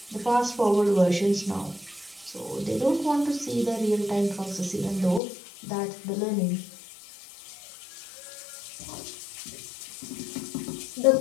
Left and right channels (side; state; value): right; drops out; at 5.2 s